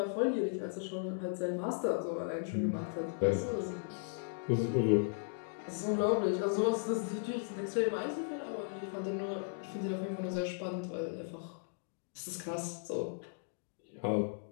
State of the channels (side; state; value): right; silent; digital silence